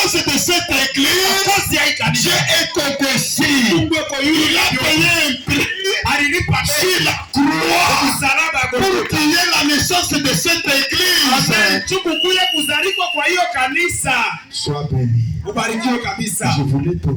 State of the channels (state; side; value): identical; both; correlation 1.00